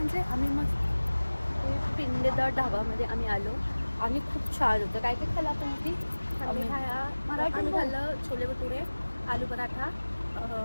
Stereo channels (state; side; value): inverted; both; correlation -1.00